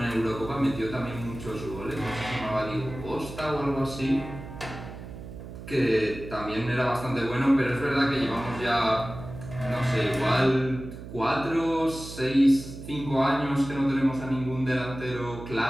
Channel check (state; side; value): noise; right; hum, 12 dB below the sound